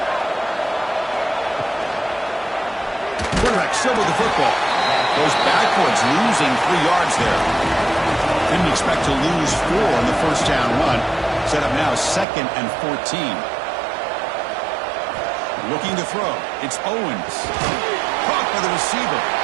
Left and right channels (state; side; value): drops out; left; at 12.2 s